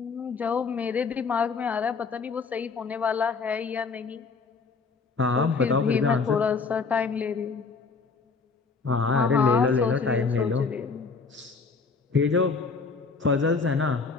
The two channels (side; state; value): right; quieter; 4.8 dB